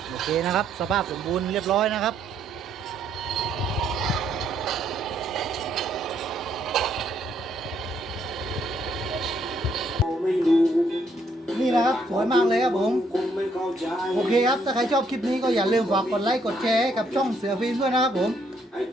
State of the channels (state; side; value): normal; both; correlation 0.70